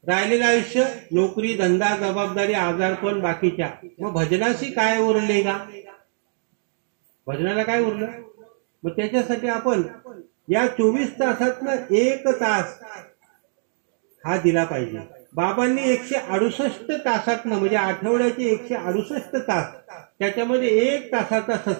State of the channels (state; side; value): silent; left; digital silence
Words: राहिलेलं आयुष्य नोकरी, धंदा, जबाबदारी, आजारपण, बाकीच्या. मग भजनाशी काय उरले का? भजनाला काय उरलं? मग त्याच्यासाठी आपण या 24 तासातनं 1 तास हा दिला पाहिजे. बाबांनी 168 तासातनं म्हणजे आठवड्याचे 168 तास त्याच्यामध्ये 1 तासाचा